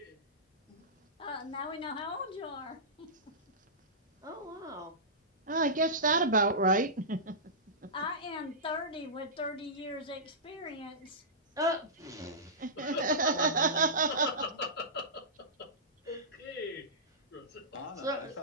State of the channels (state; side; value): normal; both; correlation -0.18